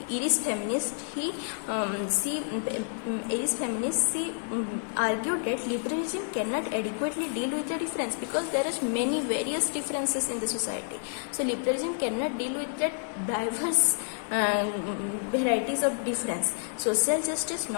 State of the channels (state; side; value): silent; right; digital silence